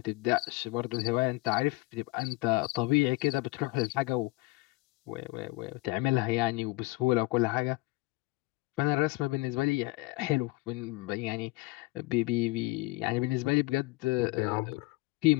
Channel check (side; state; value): right; quieter; 22.6 dB